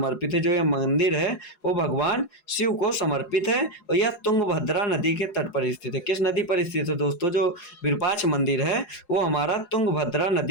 है। जो यह मंदिर है वो भगवान शिव को समर्पित है और यह तुंगभद्रा नदी के तट पर स्थित है। किस नदी पर स्थित है दोस्तों? जो विरूपाक्ष मंदिर है वो हमारा तुंगभद्रा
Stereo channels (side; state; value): right; late; 4.8 ms